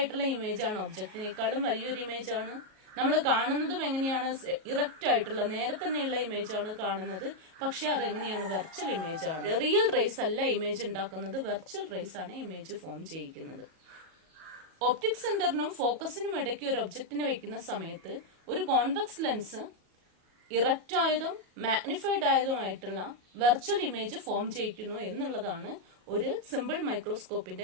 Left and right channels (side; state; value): left; late; 38 ms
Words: ഇമേജ് ആണ്, ഒബ്ജക്റ്റിനേക്കാളും വലിയൊരു ഇമേജ് ആണ്. നമ്മൾ കാണുന്നതും എങ്ങനെയാണ്? ഇറക്റ്റ് ആയിട്ടുള്ള നേരെ തന്നെയുള്ള ഇമേജ് ആണ് കാണുന്നത്. പക്ഷെ അതെങ്ങനെയാണ്? വെർച്വൽ ഇമേജ് ആണ്. റിയൽ റേസ് അല്ല ഇമേജ് ഉണ്ടാക്കുന്നത്, വെർച്വൽ റേസ് ആണ് ഇമേജ് ഫോം ചെയ്യിക്കുന്നത്. ഒപ്റ്റിക് സെന്ററിനും ഫോക്കസിനും ഇടയ്ക്ക് ഒരു ഒബ്ജക്റ്റിനെ വെക്കുന്ന സമയത്ത് ഒരു കോൺവെക്സ് ലെൻസ് ഇറക്റ്റ് ആയതും മാഗ്നിഫൈഡ് ആയതുമായിട്ടുള്ള വെർച്വൽ ഇമേജ് ഫോം ചെയ്യിക്കുന്നു എന്നുള്ളതാണ് ഒരു സിമ്പിൾ മൈക്രോസ്കോപ്പിന്റെ